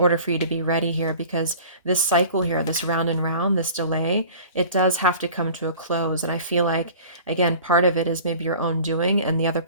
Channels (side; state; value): both; inverted; correlation -0.43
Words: for you to be ready here. Because this cycle here, this round and round, this delay, it does have to come to a close. And I feel like, again, part of it is maybe your own doing, and the other